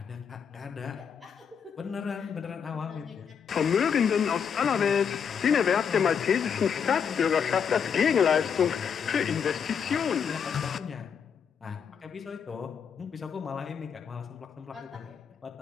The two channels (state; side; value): quieter; right; 7.1 dB